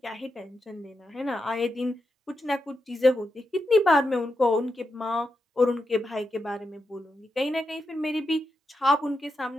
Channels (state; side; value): normal; both; correlation 0.86